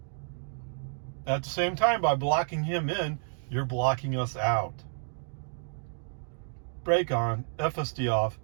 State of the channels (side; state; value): left; silent; digital silence